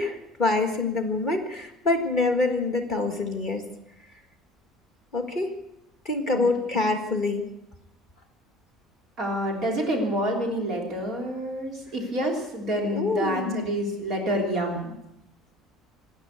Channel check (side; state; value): both; normal; correlation 0.44